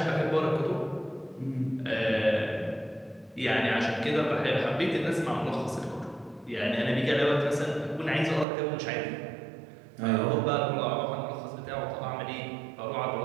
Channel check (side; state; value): left; drops out; at 8.5 s